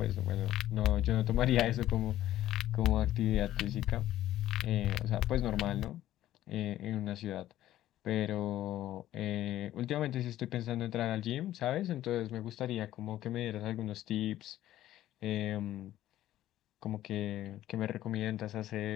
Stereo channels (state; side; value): quieter; right; 13.5 dB